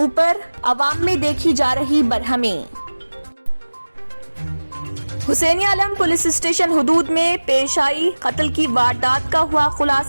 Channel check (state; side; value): inverted; both; correlation -1.00